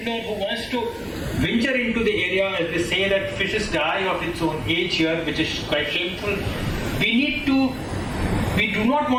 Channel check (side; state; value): both; identical; correlation 1.00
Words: who wants to venture into the area, as they say that fishes die of its own age here, which is quite shameful, we do not